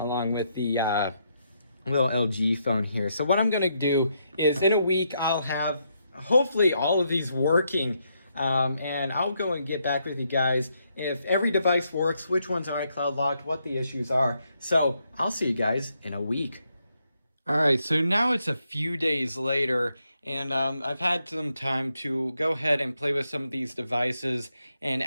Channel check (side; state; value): both; inverted; correlation -0.78